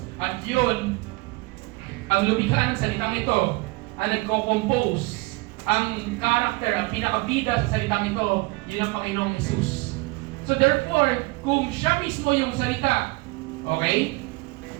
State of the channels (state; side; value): quieter; left; 24.6 dB